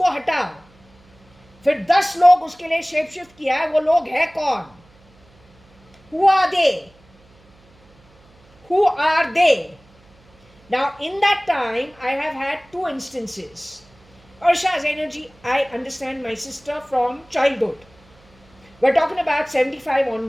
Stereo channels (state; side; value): noise; right; hum, 30 dB below the sound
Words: हटाओ, फिर 10 लोग उसके लिए shape shift किया है, वो लोग है कौन? Who are they? Who are they? Now, in that time, I have had two instances. Ursha's energy, I understand my sister from childhood. We're talking about 75